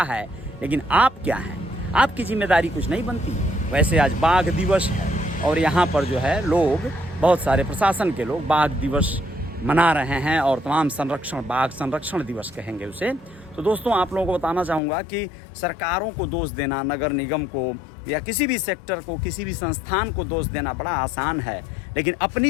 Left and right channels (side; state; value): right; drops out; at 14.8 s